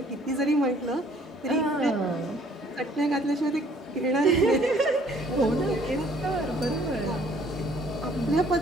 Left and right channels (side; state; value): both; normal; correlation 0.59